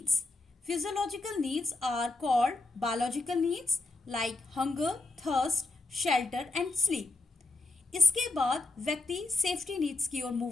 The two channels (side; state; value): right; quieter; 3.0 dB